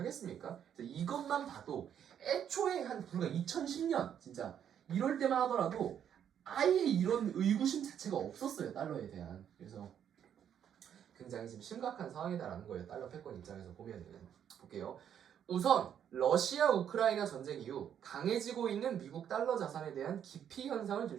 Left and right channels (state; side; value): quieter; left; 9.1 dB